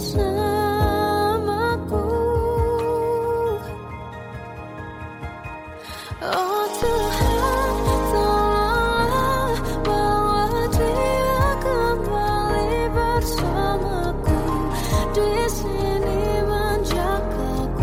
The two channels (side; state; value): both; identical; correlation 1.00